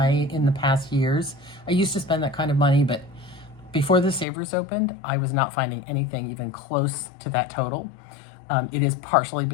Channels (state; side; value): drops out; right; at 4.2 s